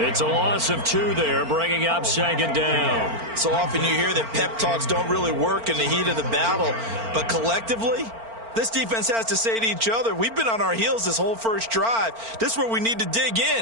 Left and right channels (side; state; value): left; late; 4.4 ms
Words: a loss of 2 there, bringing up second down. So often you hear that pep talks don't really work in the heat of the battle, but collectively, this defense has to say to each other, we've been on our heels this whole first drive. This is where we need to dig in.